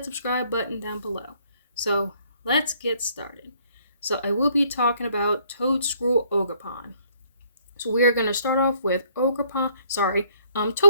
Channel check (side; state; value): both; inverted; correlation -0.65